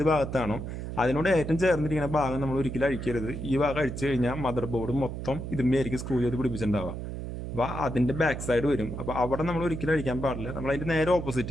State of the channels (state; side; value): noise; right; hum, 6 dB below the sound